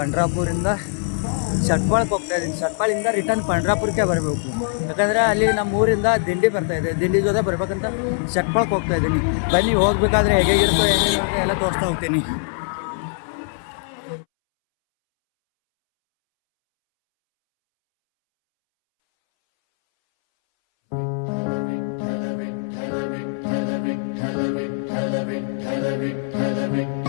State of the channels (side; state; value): right; silent; 64 dB below the other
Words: ಶಟ್ಪಾಳಕ್ಕೆ ಹೋಗ್ತಾ ಇದ್ದೀನಿ. ಶಟ್ಪಾಳಿಂದ ರಿಟರ್ನ್ ಪಂಡ್ರಾಪುರಕ್ಕೆ ಬರಬೇಕು. ಯಾಕಂದರೆ ಅಲ್ಲಿ ನಮ್ಮ ಊರಿಂದ ದಿಂಡಿ ಬರ್ತಾಯಿದೆ. ದಿಂಡಿ ಜೊತೆ ಬರ್ಬೇಕಂತ ಶಟ್ಪಾಳಕ್ಕೆ ಹೋಗ್ತಾ ಇದ್ದೀನಿ. ಬನ್ನಿ, ಹೋಗ್ಬೇಕಾದ್ರೆ ಹೇಗಿರುತ್ತೋ ಏನೇನಿರುತ್ತೆ ಎಲ್ಲ ತೋರಿಸ್ತಾ ಹೋಗ್ತೀನಿ.